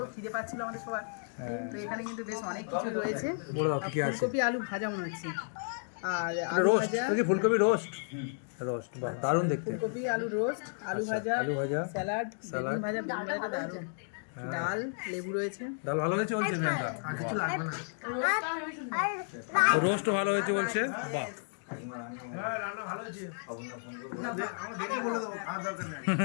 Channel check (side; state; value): right; silent; digital silence